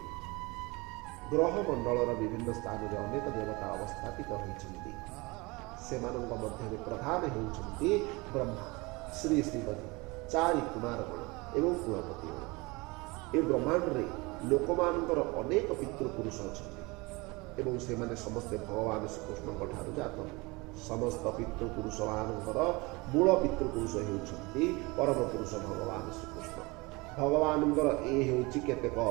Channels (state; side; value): quieter; left; 25.0 dB